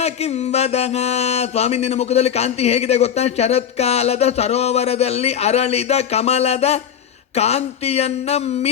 ಕಿಂವದಹ. ಸ್ವಾಮಿ ನಿನ್ನ ಮುಖದಲ್ಲಿ ಕಾಂತಿ ಹೇಗಿದೆ ಗೊತ್ತಾ? ಶರತ್ಕಾಲದ ಸರೋವರದಲ್ಲಿ ಅರಳಿದ ಕಮಲದ ಕಾಂತಿಯನ್ನ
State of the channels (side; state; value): right; quieter; 8.6 dB